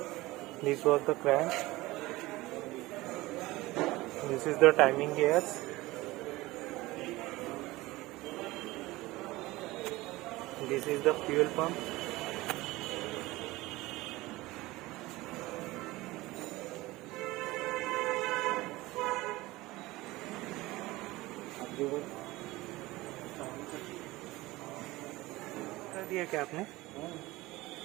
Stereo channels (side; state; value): left; quieter; 19.5 dB